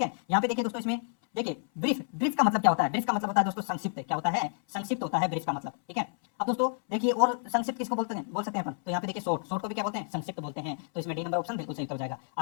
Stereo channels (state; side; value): silent; right; 58 dB below the other